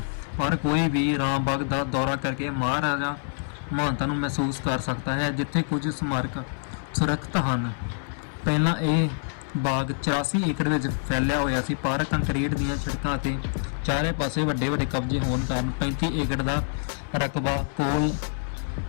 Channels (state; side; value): silent; right; 58 dB below the other